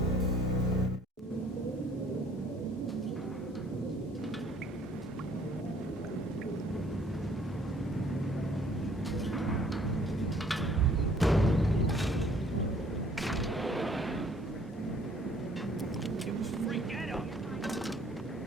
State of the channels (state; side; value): normal; both; correlation 0.59